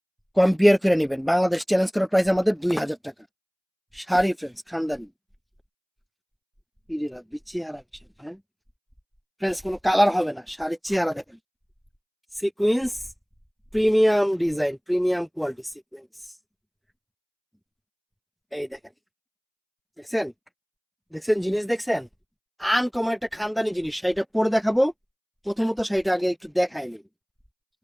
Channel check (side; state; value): both; identical; correlation 1.00